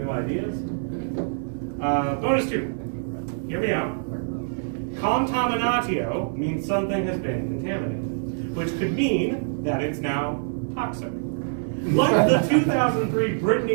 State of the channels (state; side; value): silent; left; digital silence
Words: ideas. Bonus 2. Hear me out. Contaminatio means something has been contaminated, which could mean that it's now toxic. Like the 2003